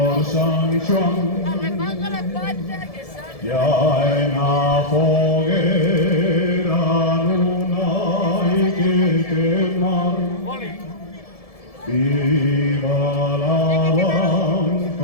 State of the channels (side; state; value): right; late; 1.7 ms